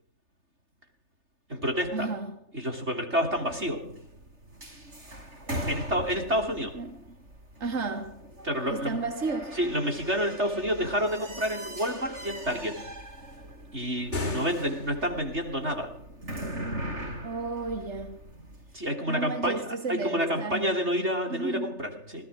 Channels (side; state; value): left; late; 3.3 ms